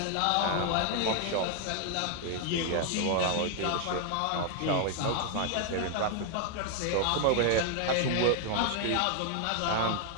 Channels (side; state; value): both; different; correlation 0.00